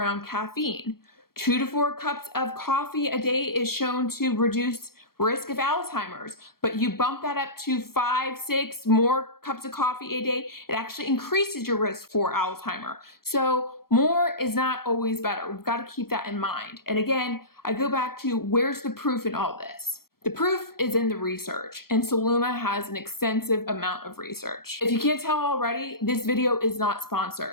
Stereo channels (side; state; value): right; late; 0.94 ms